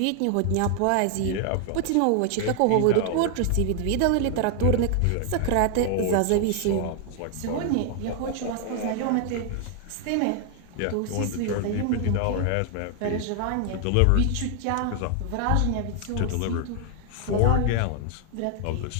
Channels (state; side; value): different; both; correlation 0.00